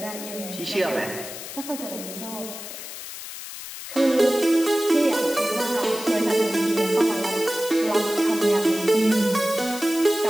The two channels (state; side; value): noise; left; hiss, 11 dB below the sound